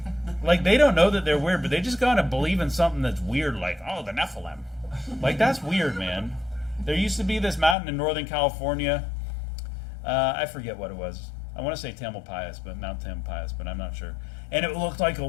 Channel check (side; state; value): right; drops out; at 7.8 s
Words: like they don't know that they're weird, but they just gotta believe in something that's weird, like the Nephilim. Like that's weird, man. There used to be this mountain in Northern California. I forget what it was. I want to say Tamalpais, but Mount Tamalpais, but I'm not sure. And it looked like a